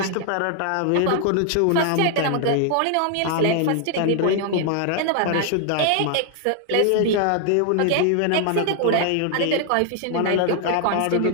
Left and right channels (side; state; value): both; different; correlation 0.00